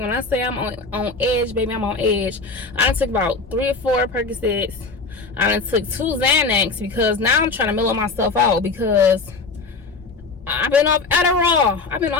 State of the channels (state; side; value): quieter; right; 4.0 dB